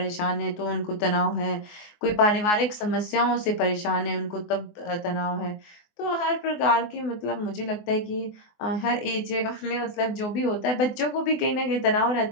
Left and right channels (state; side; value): late; right; 24 ms